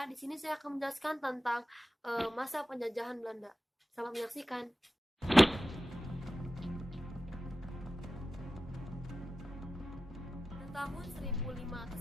Di sini saya akan menjelaskan tentang masa penjajahan Belanda. Selamat menyaksikan. Pada tahun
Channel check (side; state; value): both; normal; correlation 0.93